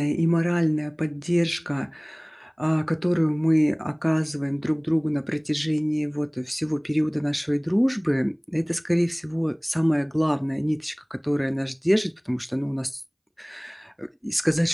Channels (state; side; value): identical; both; correlation 1.00